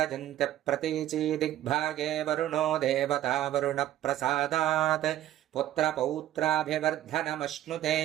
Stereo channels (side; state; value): left; quieter; 13.0 dB